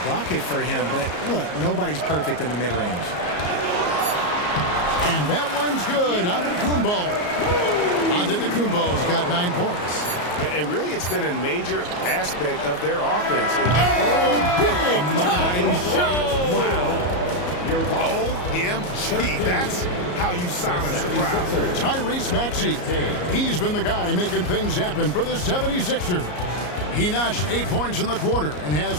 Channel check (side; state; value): right; late; 34 ms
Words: bucket for him, but look, nobody's perfect in the mid-range. And that one's good. Antetokounmpo. Antetokounmpo's got 9 points. And really, it's been a major aspect of their offense. Big time shot! Wow. OMG, that's how you silence a crowd. Tyrese Maxey. He's been the guy making things happen for the 76ers. He notched 8 points in the quarter and has